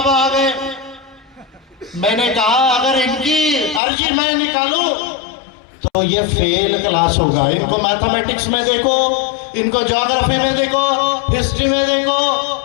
आ गए। मैंने कहा अगर इनकी अर्जी मैं निकालूं तो ये फेल क्लास होगा। इनको मैथमेटिक्स में देखो, इनको ज्योग्राफी में देखो, हिस्ट्री में देखो,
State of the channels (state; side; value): drops out; right; at 3.8 s